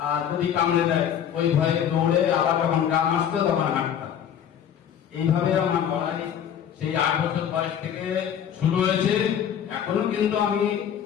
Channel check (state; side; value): quieter; right; 9.1 dB